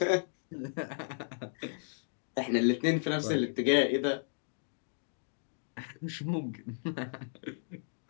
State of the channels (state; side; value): silent; right; digital silence